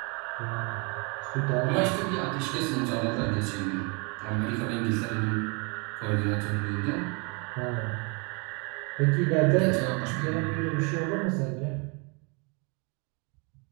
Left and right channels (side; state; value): left; quieter; 32.3 dB